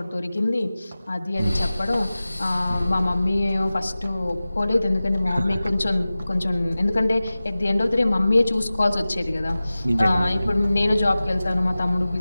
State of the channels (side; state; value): both; inverted; correlation -0.97